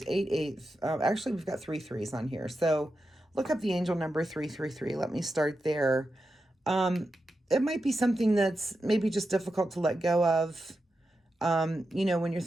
8 8. Actually, we've got 3 3s on here. So look up the angel number 333. Let me start there. It might be something that's maybe just difficult to let go of. When you're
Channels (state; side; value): normal; both; correlation 0.89